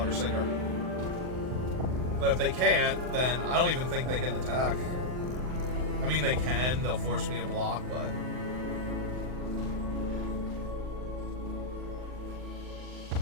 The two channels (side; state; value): left; late; 39 ms